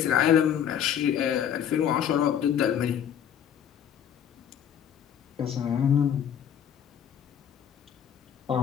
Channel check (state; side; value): quieter; right; 9.0 dB